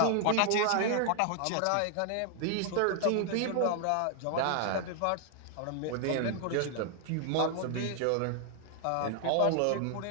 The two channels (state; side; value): different; both; correlation 0.00